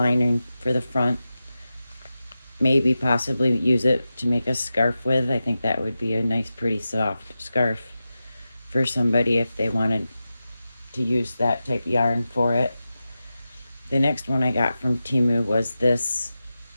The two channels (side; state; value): both; inverted; correlation -0.93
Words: for the front. Maybe possibly use it to make a scarf with. I think that would be a nice, pretty soft scarf for somebody if they wanted to use that type of yarn for it. The next one I got from Temu was this.